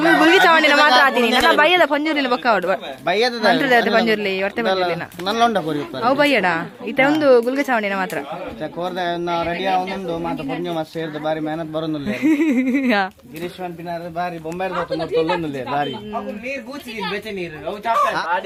ಗುಲ್ಗಿ ಚಾವಣಿನ ಮಾತ್ರ ಆತೀನಿ ನನ್ನ ಬಯ್ಯದ ಪಂಜೂರಿನ ಬೊಕ್ಕ ಅವಡು ಬಯ್ಯದ ಪಂಜೂರ್ಲಿ ಹೊರತೆ ಪಂಜೂರ್ಲಿನ ನಲ್ಲೊಂಡ ಕೋರಿ ಅವು ಬಯ್ಯಡ ಈತ ಒಂದು ಗುಲ್ಗಿ ಚಾವಣಿನ ಮಾತ್ರ ಕೋರ್ದ ರೆಡಿ ಒಂದೊಂದು ಮಾತ್ರ ಪಂಜು ಮಾಸ ಸೇರಿದ ಬಾರಿ ಮೆಹನತ್ ಬರೋದಿಲ್ಲ ಗಿರೀಶ್ ಪಂಪಿನಾರ ಬಾರಿ ಬೊಂಬೆ ತೊಲ್ಲೊಂದಿಲ್ಲ ಬಾರಿ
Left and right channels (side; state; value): both; identical; correlation 1.00